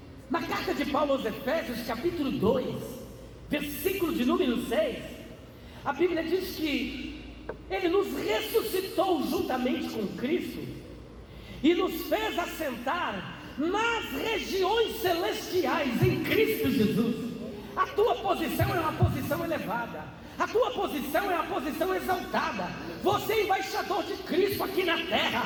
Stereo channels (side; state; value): both; identical; correlation 1.00